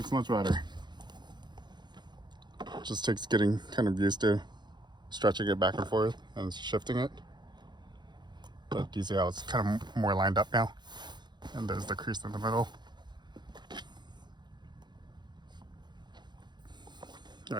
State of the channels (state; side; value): late; left; 0.21 ms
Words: much better. Just takes getting kind of used to stretching it back and forth and shifting it. But you see how it's kind of more lined up now? And there's the crease in the middle. All